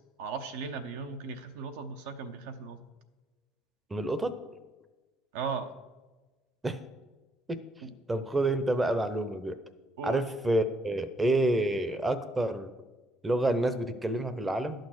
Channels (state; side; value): normal; both; correlation 0.72